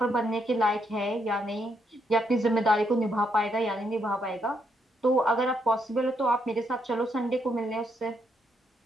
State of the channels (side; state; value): both; normal; correlation 0.76